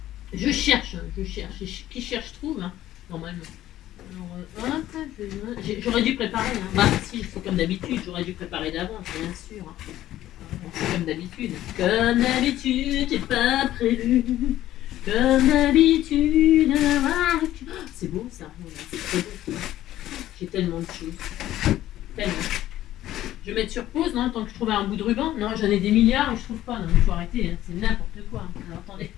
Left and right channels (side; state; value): right; quieter; 13.7 dB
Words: Je cherche. Qui cherche trouve, hein, normalement. Alors, hop, j'aurais dû préparer. Hein. Bah, si, c'est comme d'habitude, j'aurais dû préparer d'avance, bien sûr. Hein. C'est comme d'habitude. Comme d'habitude, j'ai pas prévu. Comme d'habitude, c'est beau ça. C'est très beau. J'ai tellement de choses. Tellement. Je vais mettre sur pause, non, tant que je trouve un bout de ruban. Non, j'en ai des milliards et je trouve pas. Non, il faut arrêter. Hein. C'est n'importe quoi. Alors, attendez.